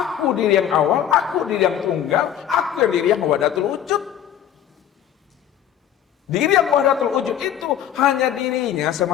diri yang awal, aku diri yang tunggal, aku yang diri yang wahdatul wujud. Diri yang wahdatul wujud itu hanya dirinya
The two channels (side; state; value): right; quieter; 10.3 dB